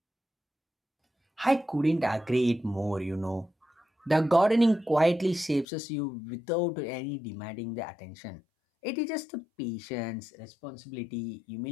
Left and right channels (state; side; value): drops out; right; at 5.7 s